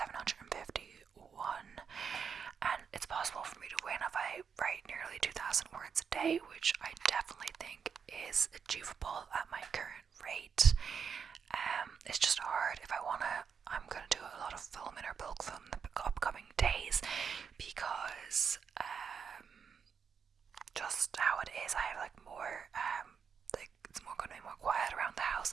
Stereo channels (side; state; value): left; quieter; 6.6 dB